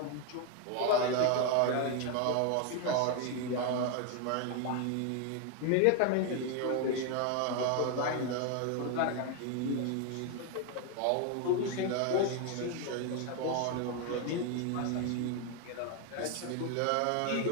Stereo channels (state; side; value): different; both; correlation 0.01